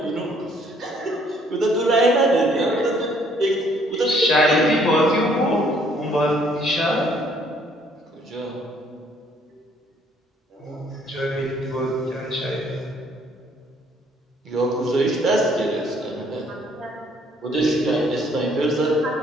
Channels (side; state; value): both; normal; correlation 0.63